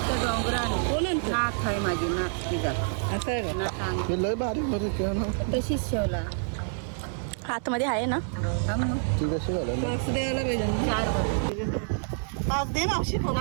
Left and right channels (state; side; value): silent; left; 60 dB below the other